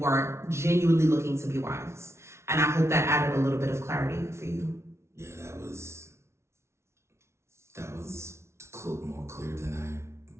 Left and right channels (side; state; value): left; late; 0.13 ms